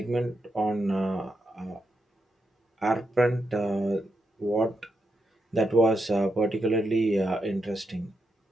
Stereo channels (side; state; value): both; normal; correlation 0.84